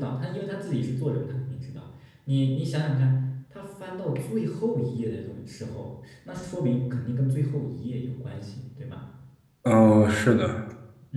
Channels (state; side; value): identical; both; correlation 1.00